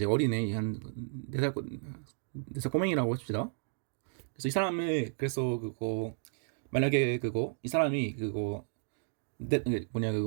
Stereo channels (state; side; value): silent; left; digital silence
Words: 어린애 한 4살 꼬맹이라고 합시다. 그래서 이 사람을 그래서 그거 만약에 그거 이 사람이 그거 뭐냐